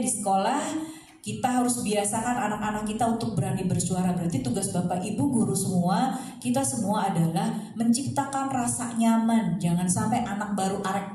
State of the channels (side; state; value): both; identical; correlation 1.00